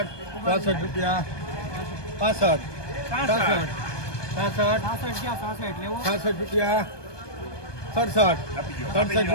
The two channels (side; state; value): right; late; 1.2 ms